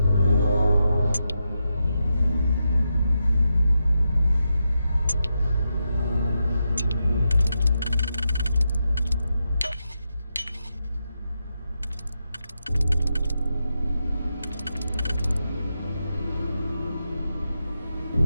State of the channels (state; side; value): inverted; both; correlation -0.86